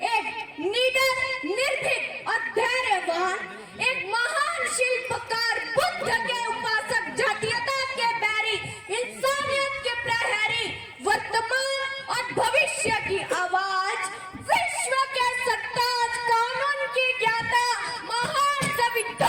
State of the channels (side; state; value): both; identical; correlation 1.00